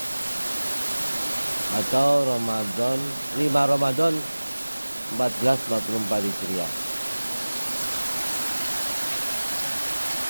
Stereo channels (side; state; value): both; inverted; correlation -1.00